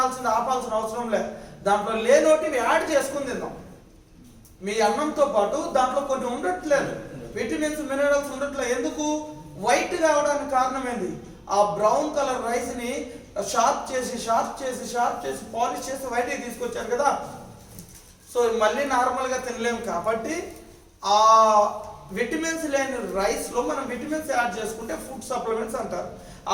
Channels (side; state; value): both; identical; correlation 1.00